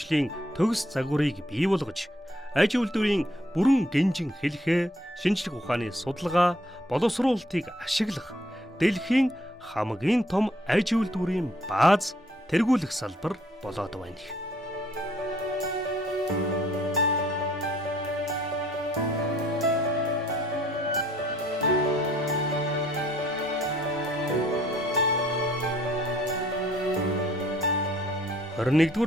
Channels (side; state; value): both; normal; correlation 0.63